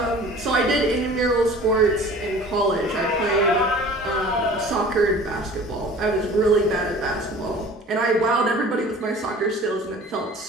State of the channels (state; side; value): normal; both; correlation 0.44